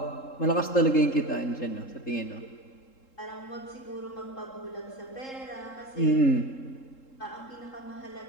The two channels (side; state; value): right; late; 3.7 ms